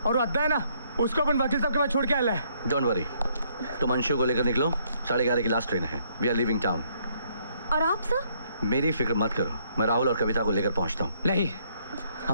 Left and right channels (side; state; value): both; inverted; correlation -0.68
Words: और अद्दा है ना, उसको अपन वकील साहब के पास छोड़ के आया है। डोंट वरी, तुम अंशु को लेकर निकलो, 11:30 की लास्ट ट्रेन है। We are living town. और आप सर? मेरी फिक्र मत करो, मैं राहुल और कविता को लेकर पहुंचता हूँ। नहीं,